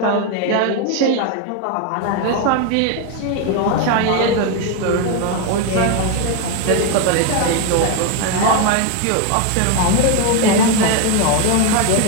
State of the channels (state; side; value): different; both; correlation 0.02